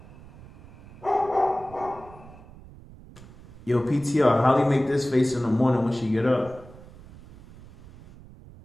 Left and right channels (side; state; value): right; noise; rumble, 20 dB below the sound